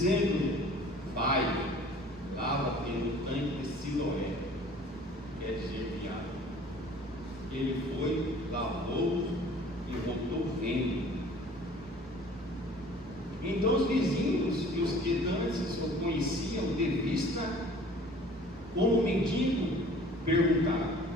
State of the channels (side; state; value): both; normal; correlation 0.49